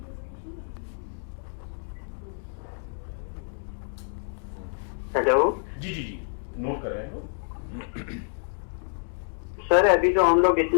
हेलो जी नोट कर रहे हैं लोग। सर, अभी तो हम लोग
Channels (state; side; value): silent; right; digital silence